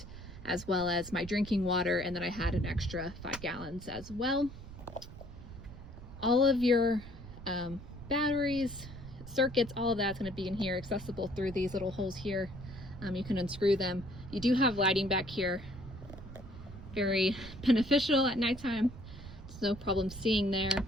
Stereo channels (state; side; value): noise; right; rumble, 14 dB below the sound